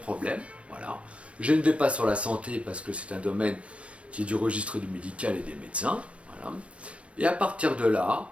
Voilà, je ne vais pas sur la santé parce que c'est un domaine qui est du registre du médical et des médecins. Voilà, et à partir de là,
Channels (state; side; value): late; left; 0.062 ms